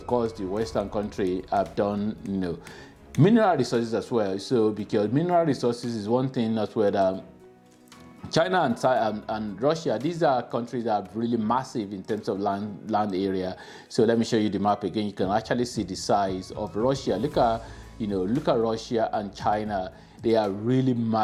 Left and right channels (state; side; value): identical; both; correlation 1.00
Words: course, the Western country have done, mineral resources as well. So because mineral resources is one thing as well that China and Russia, these are countries that are really massive in terms of land area. So let me show you the map again. You can actually see the size of Russia. Look at Russia and China. They are really